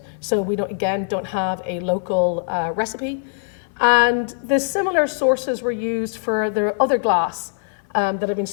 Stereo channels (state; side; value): silent; right; 60 dB below the other